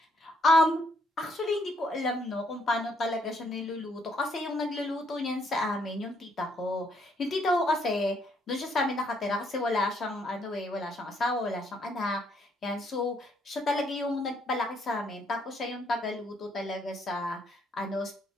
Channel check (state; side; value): normal; both; correlation 0.70